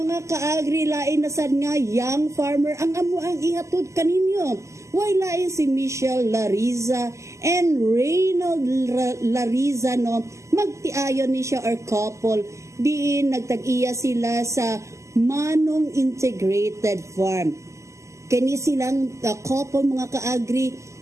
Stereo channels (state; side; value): late; left; 0.14 ms